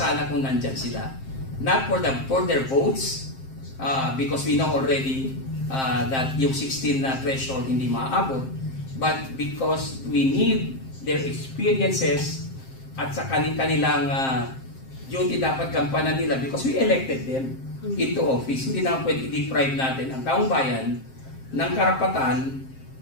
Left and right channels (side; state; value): right; late; 7.6 ms